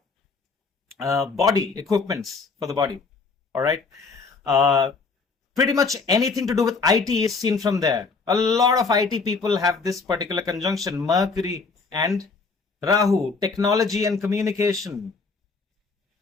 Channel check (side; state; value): right; quieter; 4.5 dB